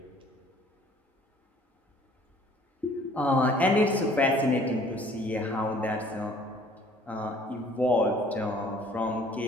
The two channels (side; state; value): both; normal; correlation 0.55